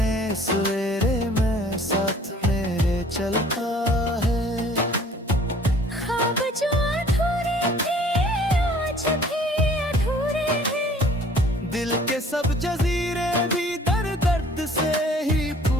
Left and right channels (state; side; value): normal; both; correlation 0.54